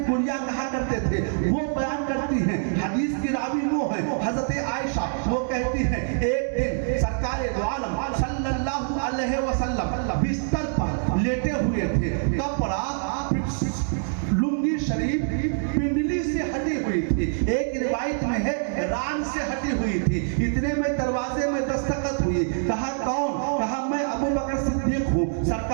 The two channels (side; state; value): left; silent; digital silence